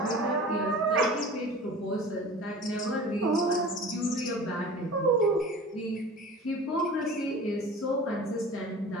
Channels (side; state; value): both; normal; correlation 0.39